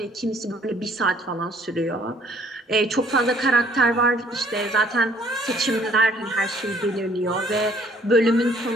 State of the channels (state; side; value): normal; both; correlation 0.61